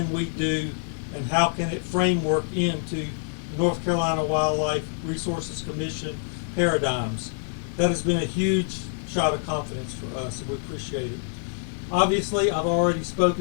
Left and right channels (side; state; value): right; silent; digital silence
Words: we do and how can it framework into the North Carolina Wildlife Resources Commission paradigms. That has been a huge shot of confidence for us, and we appreciate it. Obviously, I've already